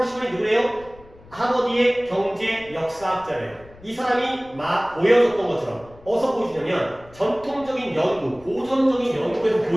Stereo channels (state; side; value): noise; left; rumble, 23 dB below the sound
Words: 누구래요? 하버드의 경제 역사학자래요. 이 사람이 막 보여줬던 것처럼, 어디서 보여주냐면 전통적인 연구, 고전적인 연구에서